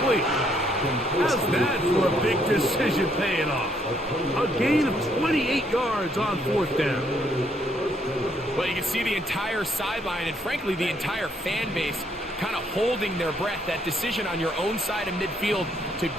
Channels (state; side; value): normal; both; correlation 0.70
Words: How's that for a big decision paying off? A gain of 28 yards on 4th down. Well, you can see the entire sideline and, frankly, the entire fan base kind of holding their breath. That decision on your own side of midfield to